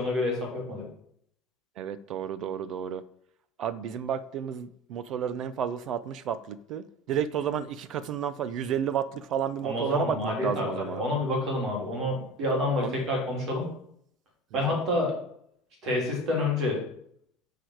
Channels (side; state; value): both; normal; correlation 0.35